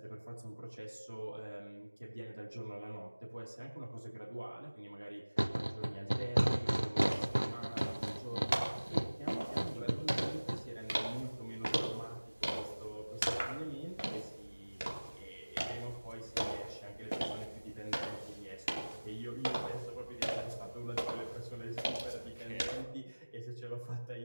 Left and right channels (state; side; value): inverted; both; correlation -1.00